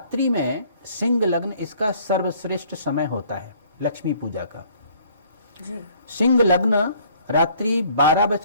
में सिंह लग्न इसका सर्वश्रेष्ठ समय होता है लक्ष्मी पूजा का जी। सिंह लग्न रात्रि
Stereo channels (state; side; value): inverted; both; correlation -0.59